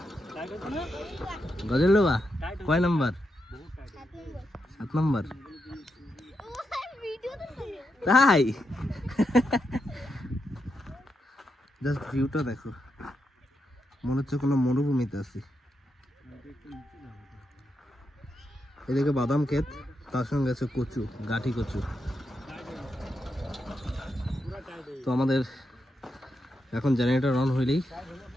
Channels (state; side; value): normal; both; correlation 0.84